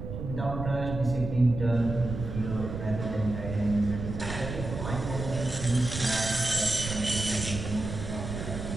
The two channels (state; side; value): noise; right; rumble, 6 dB below the sound